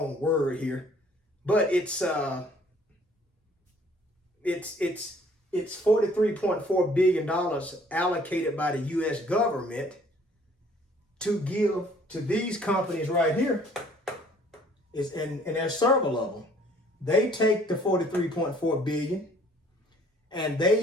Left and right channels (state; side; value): normal; both; correlation 0.57